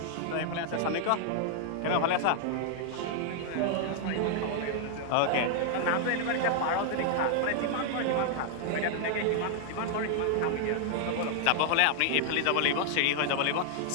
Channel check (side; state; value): both; different; correlation 0.00